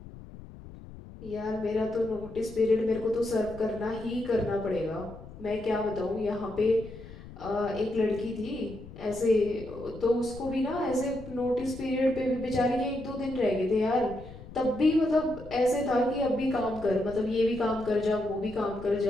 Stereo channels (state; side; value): noise; left; rumble, 16 dB below the sound